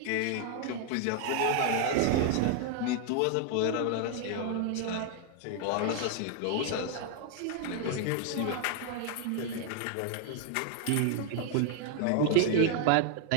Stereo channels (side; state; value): both; different; correlation 0.00